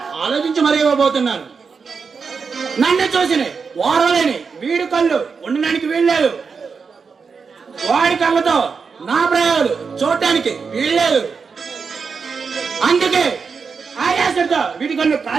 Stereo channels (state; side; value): quieter; left; 5.4 dB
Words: ఆలోచించి మరీ ఇవ్వబోతున్నాను. నన్ను చూసిన ఓరలేని వీడి కళ్ళు ఉండడానికి వీల్లేదు. వాడి కళ్ళతో నా ప్రయోగాలు చూడటానికి వీల్లేదు. అందుకే ఆయాసంతో వీడి కళ్ళు